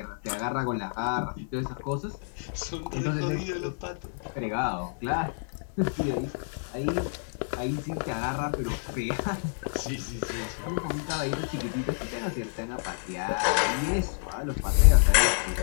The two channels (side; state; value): right; silent; 59 dB below the other